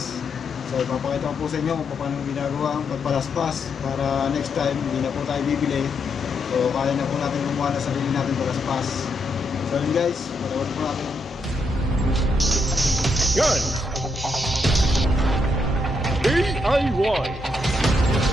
So ipapakita ko po sa inyo kung paano ginagawa ang pagpalaspas para next time hindi na po tayo bibili. So kaya na po natin gumawa na sarili natin palaspas. So yun guys, panood po natin. Good! DIY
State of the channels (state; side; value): normal; both; correlation 0.79